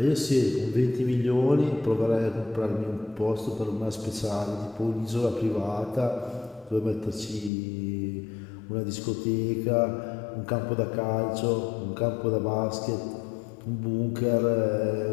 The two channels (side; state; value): right; drops out; at 7.5 s